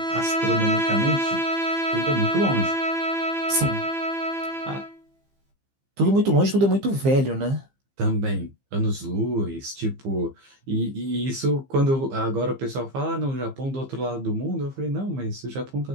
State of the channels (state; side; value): late; left; 15 ms